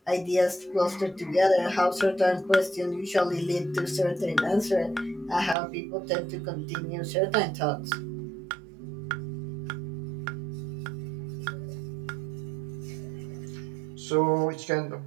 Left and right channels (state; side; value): drops out; left; at 5.6 s